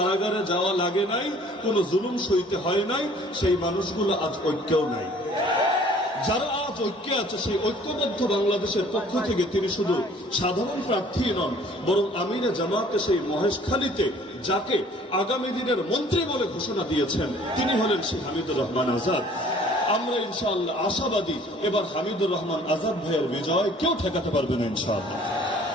যাওয়া লাগে নাই, কোনো জুলুম সইতে হয় নাই, সেই মানুষগুলো আজ ঐক্যও নাই। যারা আজ ঐক্যে আছে, সেই ঐক্যবদ্ধ বাংলাদেশের পক্ষ থেকে তিনি শুধু সাধারণ প্রার্থী নন, বরং আমিরে জামাতে সেই মহেশখালীতে যাকে আগামী দিনের মন্ত্রী বলে ঘোষণা দিয়েছেন, তিনি হলেন সেই হামিদুর রহমান আজাদ। আমরা ইনশাআল্লাহ আশাবাদী, এবার হামিদুর রহমান আজাদ ভাইয়ের বিজয় কেউ ঠেকাতে পারবে না ইনশাআল্লাহ।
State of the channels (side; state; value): both; normal; correlation 0.54